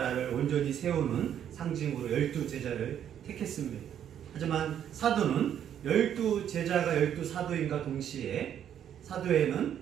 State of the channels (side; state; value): left; quieter; 9.7 dB